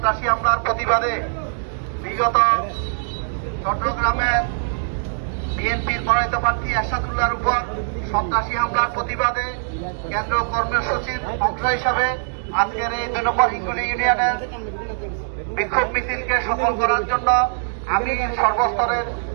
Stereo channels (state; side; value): silent; left; digital silence